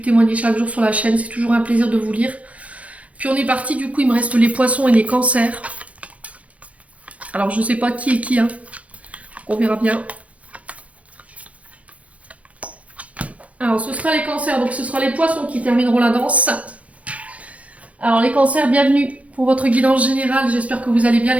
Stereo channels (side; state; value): left; late; 0.066 ms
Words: témoignée chaque jour sur la chaîne. C'est toujours un plaisir de vous lire. Puis on est parti, du coup il me reste les poissons et les cancers. Alors je sais pas qui est qui, hein. On verra bien. Alors, ce sera les cancers, donc ce sera les poissons qui termineront la danse. Alors, les cancers, bienvenue pour votre guidance générale. J'espère que vous allez bien,